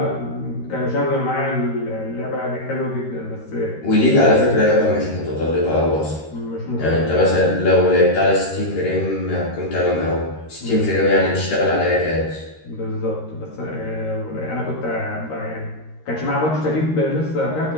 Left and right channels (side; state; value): right; late; 13 ms